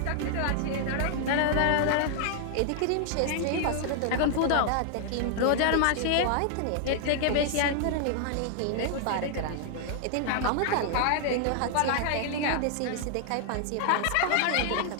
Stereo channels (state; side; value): different; both; correlation 0.00